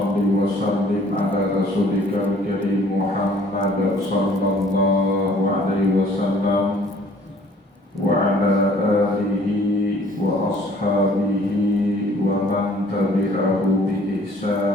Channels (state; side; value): normal; both; correlation 0.56